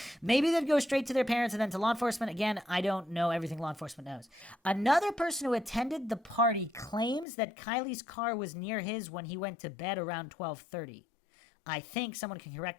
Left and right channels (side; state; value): right; drops out; at 7.2 s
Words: Maybe they'd go straight to their parents and then to law enforcement. Again, I don't know everything law enforcement knows. Another person who attended the party claims that Kylie's car was near his when he went to bed around 12:30. I think someone can